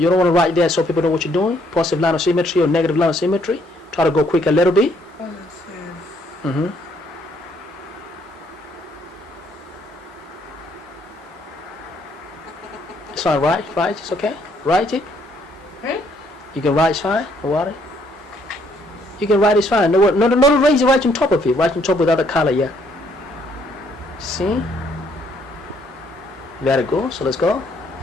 don't want to write there so people know what you're doing. Positive line of symmetry or negative line of symmetry. Try to go quick a little bit. positive It's fine. Right. It's okay. Write it. You can write. It's fine. No worry. You can write. It's fine. No, raise it right on top of it. Right on top with other color. Yeah. See. Very good. So let's go.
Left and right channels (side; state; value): both; normal; correlation 0.68